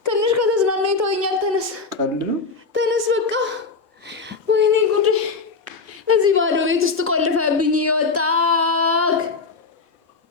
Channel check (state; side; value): quieter; right; 4.4 dB